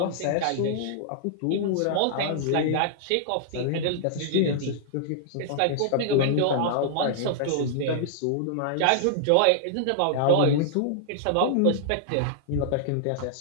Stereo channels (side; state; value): both; different; correlation -0.01